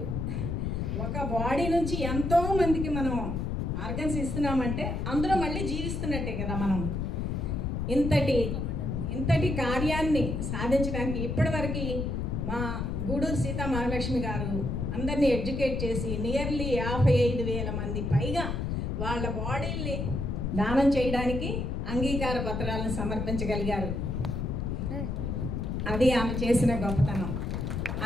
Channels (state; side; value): noise; left; rumble, 2 dB below the sound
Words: ఒక బాడీ నుంచి ఎంతో మందికి మనం ఆర్గన్స్ ఇస్తున్నామంటే అందులో మళ్ళీ జీవిస్తున్నట్టే కదా. మనం ఇంతటి కార్యాన్ని సాధించడానికి ఇప్పటివరకు మా గూడూరు సీతా మహాలక్ష్మి గారు అందరినీ ఎడ్యుకేట్ చేసి నియర్లీ 55,000 మంది పైగా వాళ్ళ బాడీల్ని దానం చేయడానికి అంగీకార పత్రాలను సమర్పించగలిగారు. అది ఆమె చేసిన గొప్పతనం.